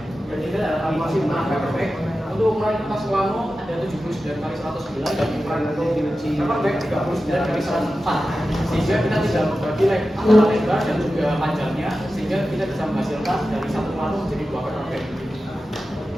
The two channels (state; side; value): normal; both; correlation 0.93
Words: Dan ini adalah animasi menggunakan paperback. Untuk ukuran kertas Wano ada 79 kali 109 dan ukuran untuk paperback 39 kali 104. Sehingga kita tidak membagi antara lebar dan juga panjangnya, sehingga kita bisa menghasilkan dari satu Wano menjadi 2 paperback.